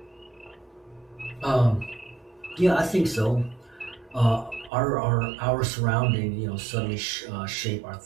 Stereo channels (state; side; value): drops out; left; at 4.7 s